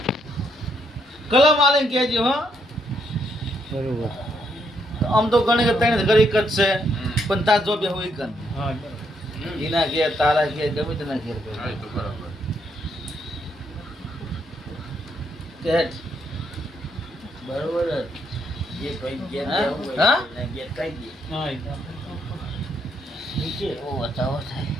કલમ આલે કેજે હો બરોબર. આમ તો ગણે કે ત્રણ ઘર એક જ છે પણ તાર જો બેહું એક જ એના ઘેર તારા ઘેર ગમે તેના ઘેર હા, એ તો બરાબર. કેટ બરોબર જ. જે ભાઈ ઘેર હા? બેહવું હોય હા? એના ઘેર કહી દે. ઓ બતાવો થાય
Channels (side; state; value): both; normal; correlation 0.75